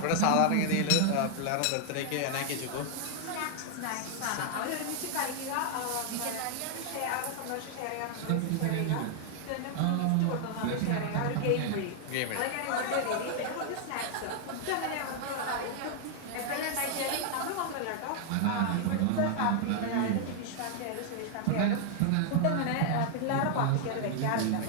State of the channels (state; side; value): different; both; correlation 0.00